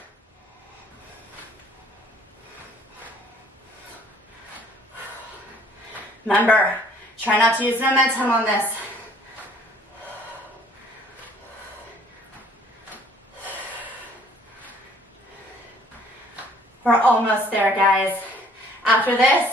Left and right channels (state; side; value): normal; both; correlation 0.57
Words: Remember, try not to use momentum on this. We're almost there, guys. After